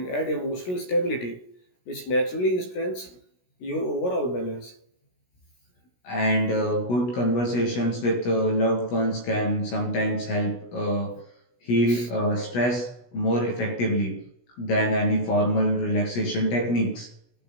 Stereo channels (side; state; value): right; late; 16 ms